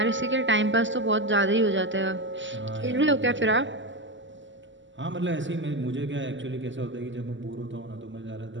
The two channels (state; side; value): late; left; 0.54 ms